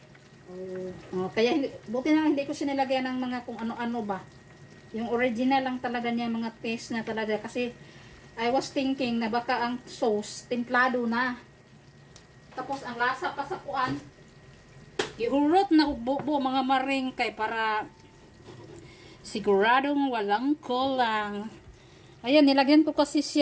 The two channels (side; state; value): both; identical; correlation 1.00